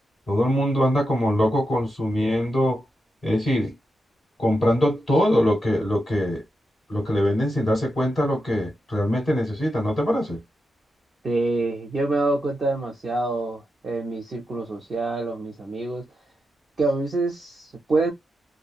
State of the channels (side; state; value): both; normal; correlation 0.87